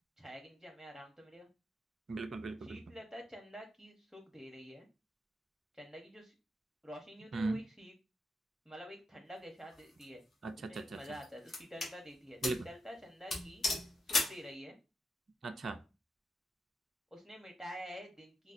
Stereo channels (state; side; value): normal; both; correlation 0.84